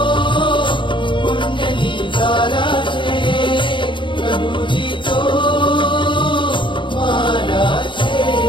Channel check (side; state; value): right; late; 0.23 ms